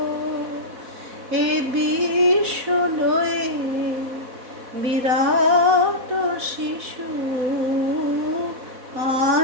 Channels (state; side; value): late; left; 4.1 ms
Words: এ বিশ্ব লয়ে বিরাট শিশু